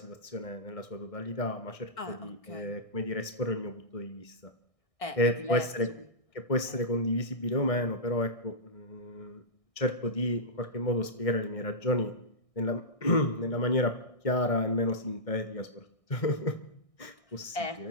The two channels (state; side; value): late; right; 1.6 ms